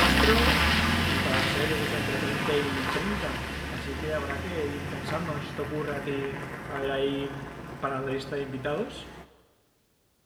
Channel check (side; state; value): both; identical; correlation 1.00